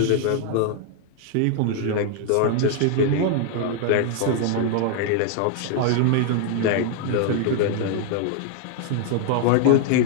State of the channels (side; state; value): both; different; correlation 0.00